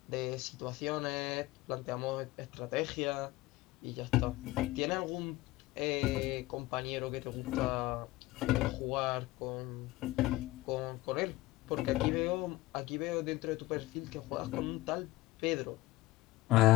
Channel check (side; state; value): right; quieter; 18.6 dB